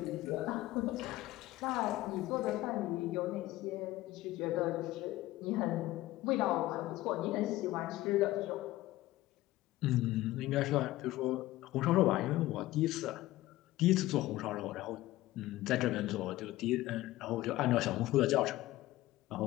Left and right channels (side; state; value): right; quieter; 16.8 dB